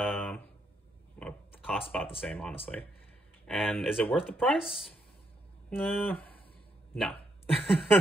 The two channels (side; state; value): both; normal; correlation 0.76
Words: costs about the same, honestly. And is it worth the price? No.